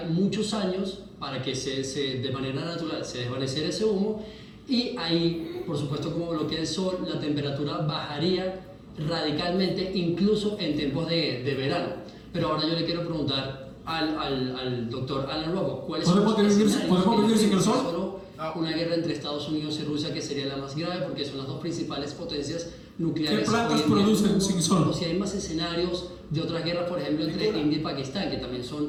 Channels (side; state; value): both; identical; correlation 1.00